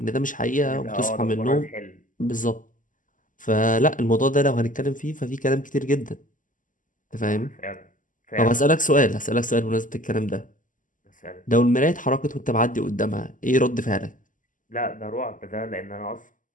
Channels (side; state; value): right; late; 0.38 ms